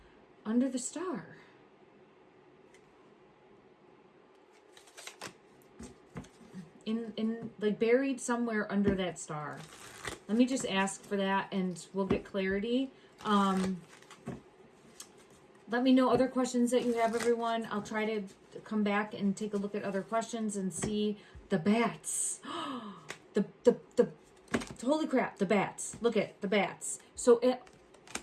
under the star. In like buried somewhere under that star. Let me just ask for that and we'll get clarity. Let me know other questions that you have, everyone. I'll try to come back and take a look at other questions and see the bats. the holy crap, the bats. Look at the bats. So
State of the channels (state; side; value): identical; both; correlation 1.00